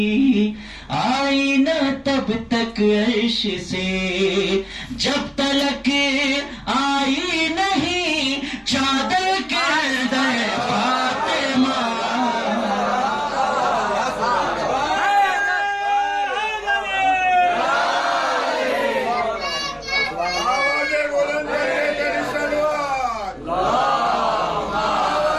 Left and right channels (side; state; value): both; identical; correlation 1.00